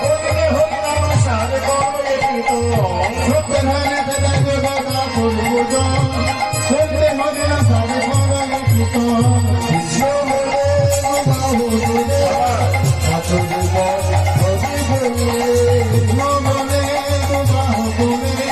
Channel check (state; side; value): noise; right; rumble, 25 dB below the sound